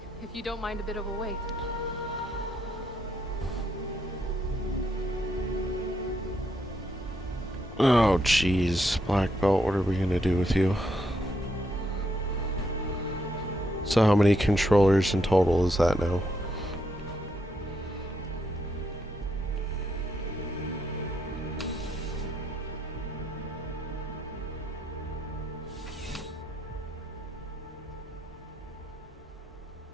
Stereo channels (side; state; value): both; normal; correlation 0.77